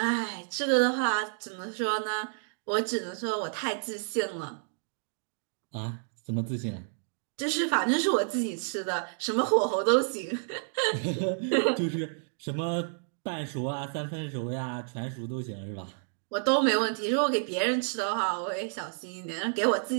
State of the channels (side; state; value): left; silent; digital silence